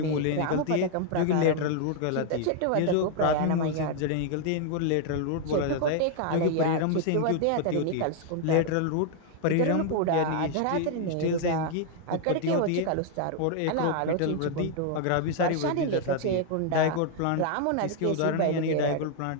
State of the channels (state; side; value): different; both; correlation 0.00